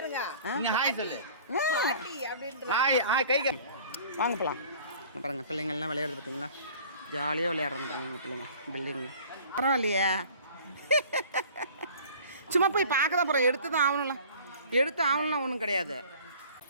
வாங்க போகலாம். பாருங்கள் பிள்ளைங்கள்லாம் விளையாடுறது பார்த்தீங்களா? ஜாலியாக விளையாடுறாங்க பாருங்க எங்கள் பிள்ளைங்க. பில்டிங்கு பரவாயில்லையே. சும்மா போய் பார்க்க தான் போகிறோம். எடுத்து தான் ஆகணும்ல. எடுத்து ஆகணும்லாம் ஒன்றும் கிடையாது.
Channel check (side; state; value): both; inverted; correlation -0.48